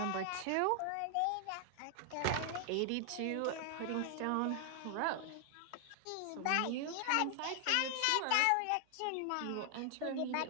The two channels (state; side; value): different; both; correlation 0.00